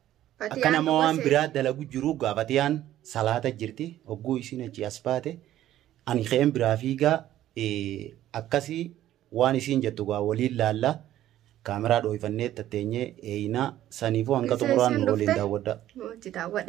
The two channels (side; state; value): left; quieter; 13.0 dB